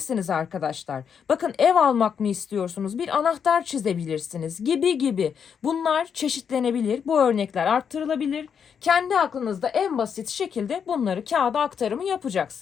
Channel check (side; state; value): right; quieter; 7.2 dB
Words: arkadaşlar. Bakın, ev almak mı istiyorsunuz? Bir anahtar çizebilirsiniz gibi gibi. Bunlar çeşitlenebilir. Bu örnekler arttırılabilir. Kendi aklınızda en basit şekilde bunları kağıda aktarımı